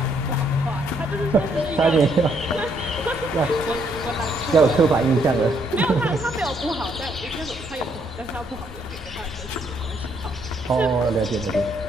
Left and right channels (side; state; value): both; normal; correlation 0.71